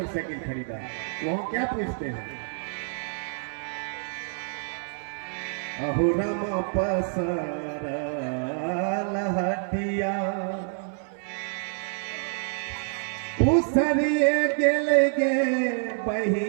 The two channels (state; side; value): silent; left; digital silence